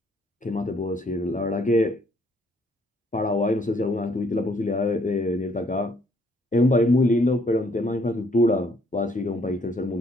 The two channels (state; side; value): normal; both; correlation 0.66